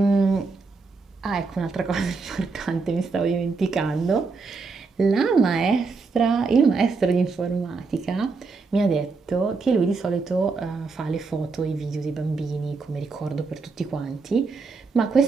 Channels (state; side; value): quieter; left; 4.3 dB